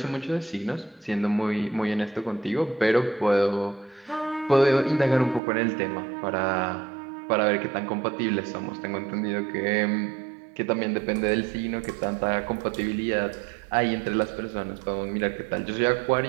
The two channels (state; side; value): drops out; left; at 5.4 s